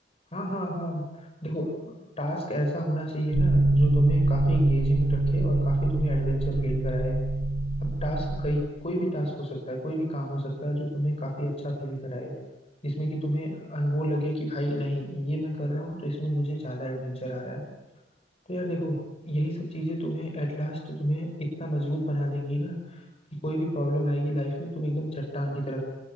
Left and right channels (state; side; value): normal; both; correlation 0.84